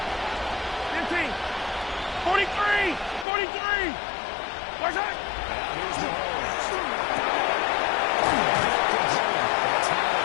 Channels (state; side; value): drops out; right; at 3.2 s